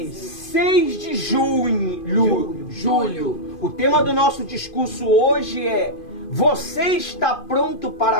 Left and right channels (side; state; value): right; late; 2.5 ms